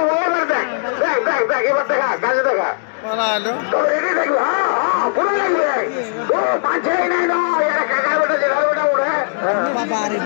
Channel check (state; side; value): silent; right; digital silence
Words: এবার দেখ এবার দেখা কাজে দেখা তো রেডি দেখবি। হ্যাঁ পুরো লাগবে তো পাঁচই নাই না এটা কাকার বেটা জেলার বেটা ওরে বাবা রে